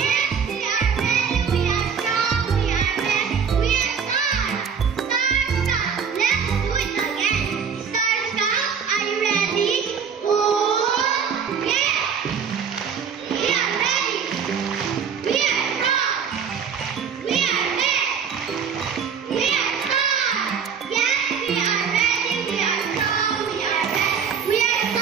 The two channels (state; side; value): quieter; left; 6.7 dB